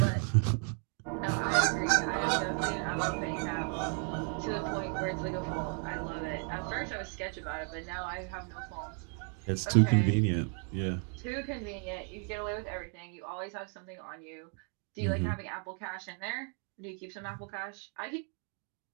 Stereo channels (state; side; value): quieter; left; 39.2 dB